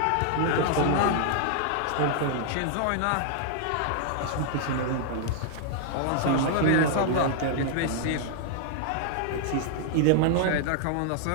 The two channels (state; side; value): different; both; correlation -0.01